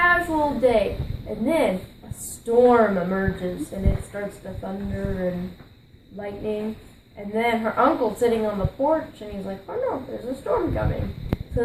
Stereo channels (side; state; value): both; identical; correlation 1.00